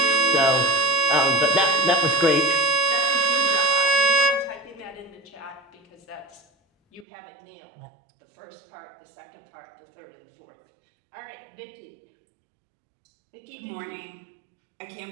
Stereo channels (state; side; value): drops out; left; at 7.1 s